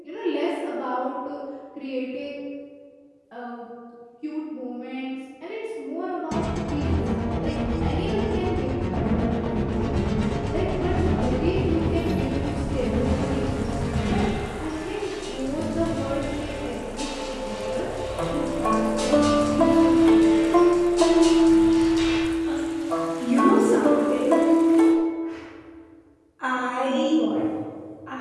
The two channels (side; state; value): both; identical; correlation 1.00